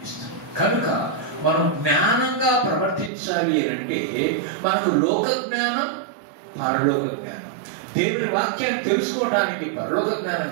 ఇస్తాను. కనుక మనం జ్ఞానంగా ప్రవర్తించాలి అని అంటే మనకు లోక జ్ఞానం, పరలోక జ్ఞానం. దేవుని వాక్యాన్ని తెలుసుకోవడానికి పరలోక జ్ఞానం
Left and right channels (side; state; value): left; drops out; at 3.1 s